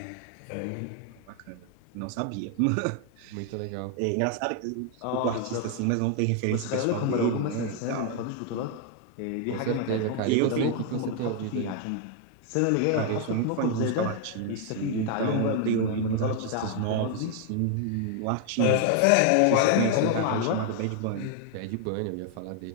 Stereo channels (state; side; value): different; both; correlation 0.00